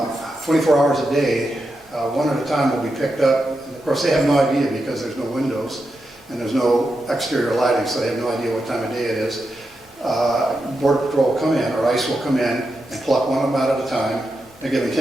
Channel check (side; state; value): both; normal; correlation 0.87